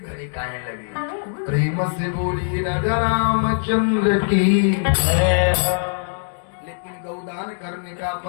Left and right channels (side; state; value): right; silent; digital silence